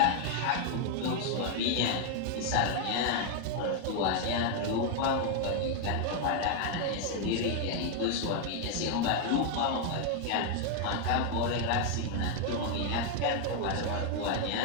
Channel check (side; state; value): both; different; correlation 0.01